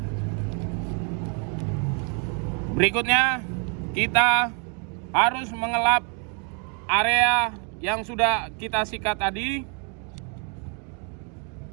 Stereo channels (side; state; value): left; quieter; 38.5 dB